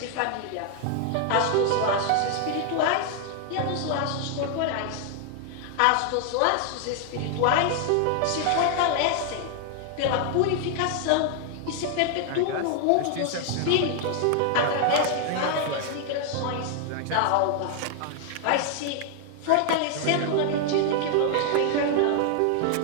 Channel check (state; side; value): different; both; correlation 0.00